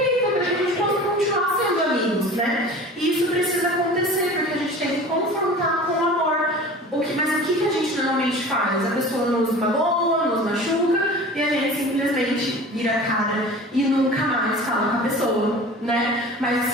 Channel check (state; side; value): normal; both; correlation 0.39